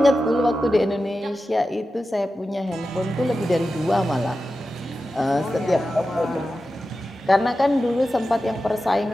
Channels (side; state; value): both; normal; correlation 0.92